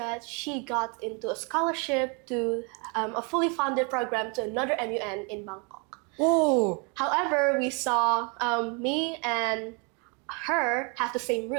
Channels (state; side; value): quieter; left; 33.9 dB